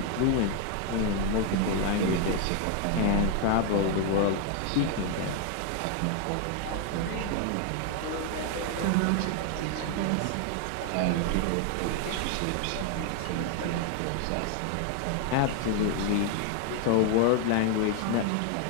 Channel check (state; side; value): different; both; correlation 0.00